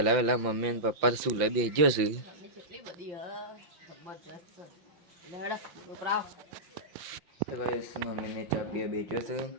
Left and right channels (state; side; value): late; left; 5.8 ms